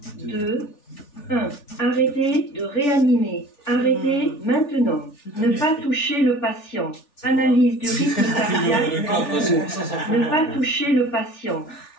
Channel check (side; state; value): right; late; 3.4 ms